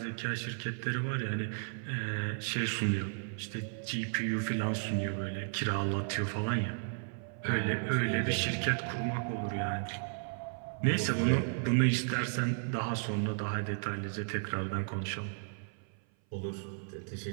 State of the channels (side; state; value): left; silent; 55 dB below the other